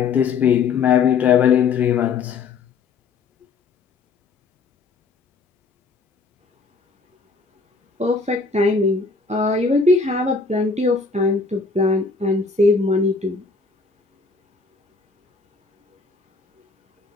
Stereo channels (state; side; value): quieter; right; 4.6 dB